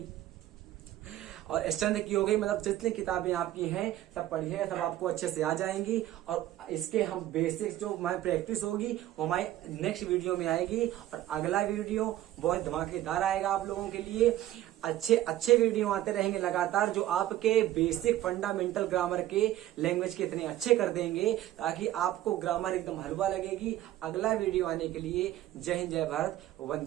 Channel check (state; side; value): quieter; left; 13.9 dB